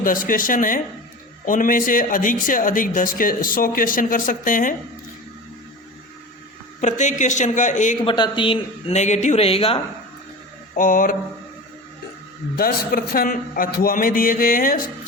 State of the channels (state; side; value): normal; both; correlation 0.32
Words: क्वेश्चन है। उनमें से अधिक 100 क्वेश्चन कर सकते हैं। प्रत्येक क्वेश्चन का 1/3 नेगेटिव रहेगा और 10 प्रश्न अथवा में दिए गए हैं।